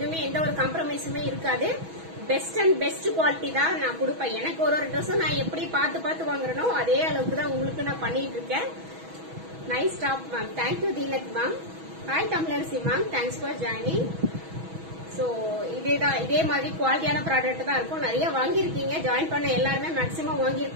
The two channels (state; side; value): late; left; 6.2 ms